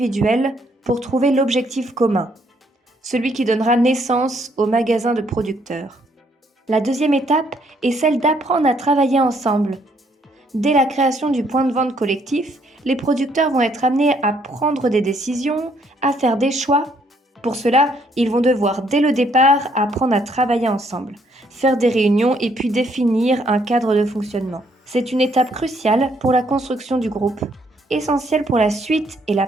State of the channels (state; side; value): normal; both; correlation 0.69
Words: pour trouver l'objectif commun, celui qui donnera naissance au magasin de producteurs. La deuxième étape est celle d'apprendre à travailler ensemble. Dès la création du point de vente collectif, les producteurs vont être amenés à prendre des décisions, à faire des choix. Pour cela, ils vont devoir dès le départ apprendre à travailler ensemble, faire des réunions et puis définir un cadre de fonctionnement. C'est une étape cruciale pour la construction du groupe, essentielle pour la suite et la